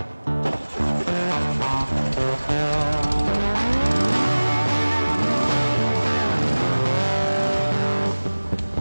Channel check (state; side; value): inverted; both; correlation -1.00